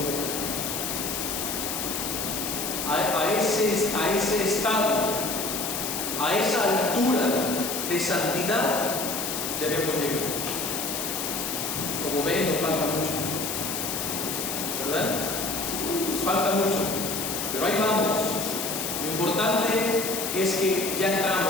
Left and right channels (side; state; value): left; noise; hiss, 3 dB below the sound